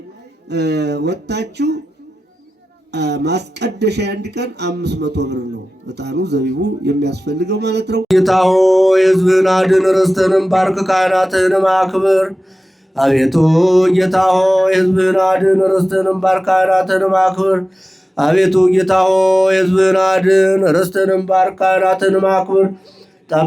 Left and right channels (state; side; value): normal; both; correlation 0.95